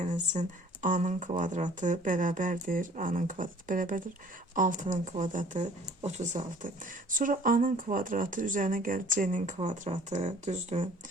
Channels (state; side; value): normal; both; correlation 0.52